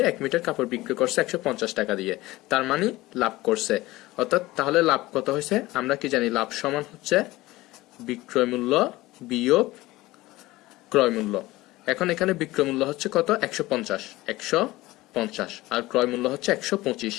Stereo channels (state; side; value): quieter; right; 18.7 dB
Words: 1 মিটার কাপড় বিক্রি করছে 150 টাকা দিয়ে, তার মানে লাভ করছে। অর্থাৎ তাহলে লাভ কত হয়েছে? আমরা কি জানি? লাভ সমান হচ্ছে বিক্রয় মূল্য বিয়োগ ক্রয় মূল্য। এখন এখানে বিক্রয় মূল্য হচ্ছে কত? 150। 50 আর ক্রয় মূল্য হচ্ছে 125,